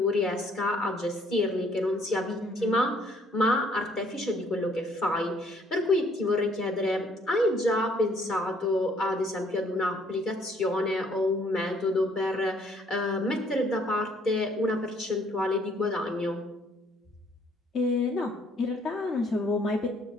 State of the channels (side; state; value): both; normal; correlation 0.63